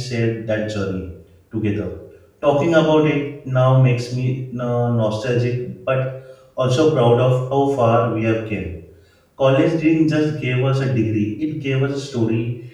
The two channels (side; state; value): both; identical; correlation 1.00